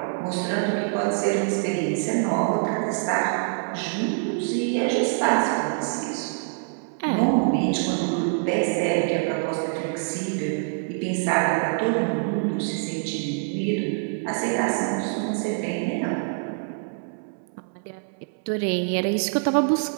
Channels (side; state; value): left; silent; 62 dB below the other